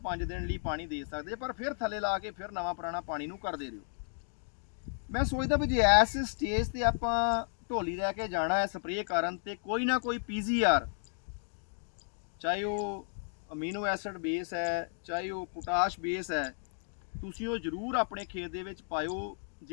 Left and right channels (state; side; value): silent; right; digital silence